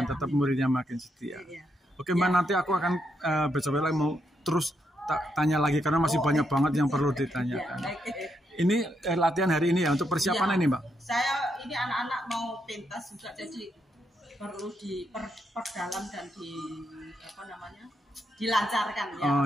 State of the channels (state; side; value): normal; both; correlation 0.80